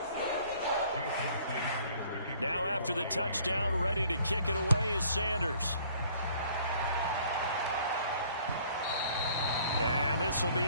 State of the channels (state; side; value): inverted; both; correlation -0.57